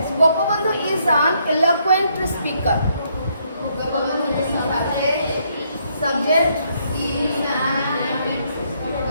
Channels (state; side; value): inverted; both; correlation -0.72